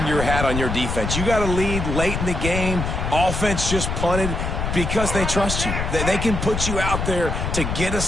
your hat on your defense. You got to lead late in the game. Offense just punted because they trust you. They can put you out there to get a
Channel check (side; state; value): left; noise; rumble, 3 dB below the sound